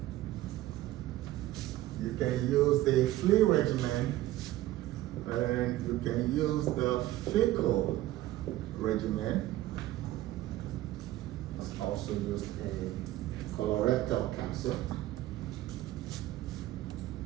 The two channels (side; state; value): left; quieter; 15.4 dB